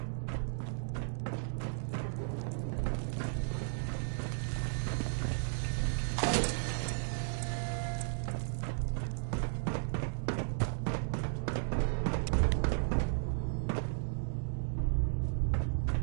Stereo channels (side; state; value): left; silent; digital silence